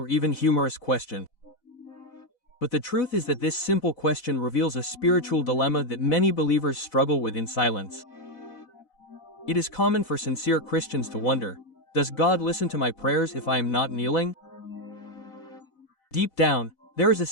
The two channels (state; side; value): late; right; 4.0 ms